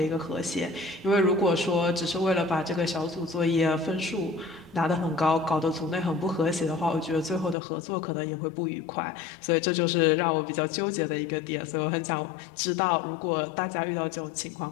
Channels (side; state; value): right; drops out; at 7.6 s